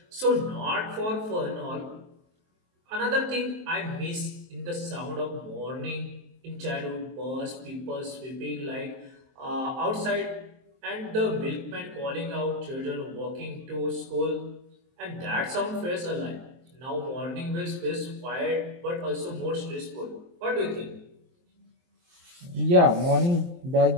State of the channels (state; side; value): late; left; 23 ms